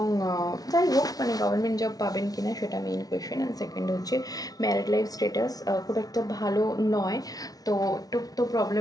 যাই হোক মানে গভর্নমেন্ট জব পাবেন কিনা সেটা মেইন কোয়েশ্চেন। অ্যান্ড সেকেন্ড হচ্ছে ম্যারিড লাইফ স্ট্যাটাস খুব একটা ভালো নয়, তো একটু তো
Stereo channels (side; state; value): right; late; 0.18 ms